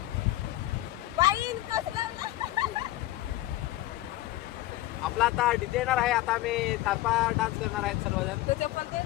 आपला आता डीजे येणार आहे. आता आम्ही तारपा डान्स करणार आहेत सर्वजण.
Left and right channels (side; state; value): right; quieter; 16.1 dB